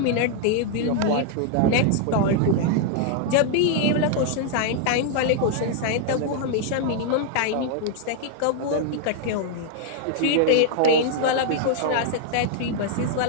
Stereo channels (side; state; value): both; different; correlation 0.00